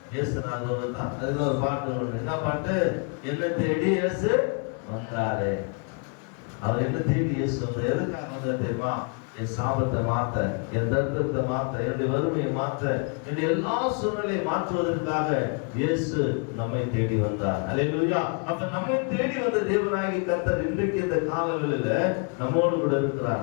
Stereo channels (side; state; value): right; quieter; 38.4 dB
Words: இயேசுநாதர் தான். அதுக்கு ஒரு பாட்டு ஒண்ணு. என்ன பாட்டு? என்ன தேடி இயேசு வந்தாரு. அவர் என்ன தேடி இயேசு வந்தார். எதுக்காக வந்தார் தெரியுமா? என் சாபத்தை மாத்த, என் தரித்திரத்தை மாத்த, என்னுடைய வறுமையை மாத்த, என்னுடைய எல்லா சூழ்நிலையை மாற்றுவதற்காக இயேசு நம்மை தேடி வந்தார். அல்லேலூயா. அப்ப நம்மை தேடி வந்த தேவனாகிய கர்த்தர் இன்றைக்கு இந்த காலங்களில நம்மோடு கூட இருக்கிறார்.